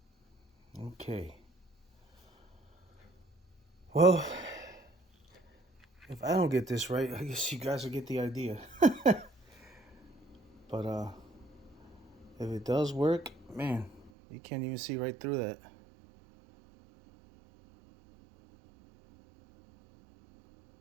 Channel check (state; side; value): drops out; left; at 14.1 s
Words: Okay. Well, if I don't get this right, I guess you guys will get the idea. But if it does work, man, you can't even see right through that.